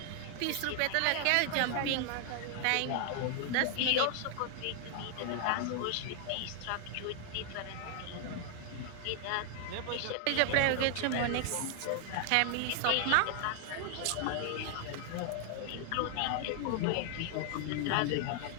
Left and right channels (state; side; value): different; both; correlation 0.00